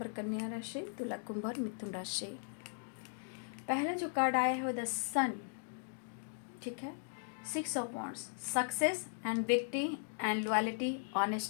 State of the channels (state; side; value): silent; right; digital silence